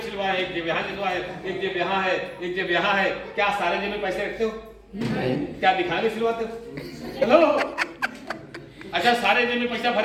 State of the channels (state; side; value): identical; both; correlation 1.00